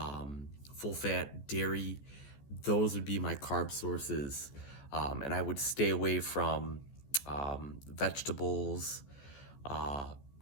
full fat, dairy. Those would be my carb sources. And I would stay away from vegetables,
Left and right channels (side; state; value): right; late; 14 ms